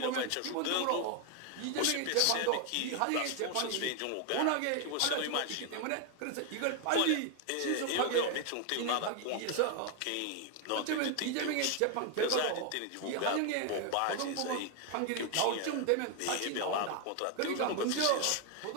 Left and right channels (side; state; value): both; different; correlation 0.01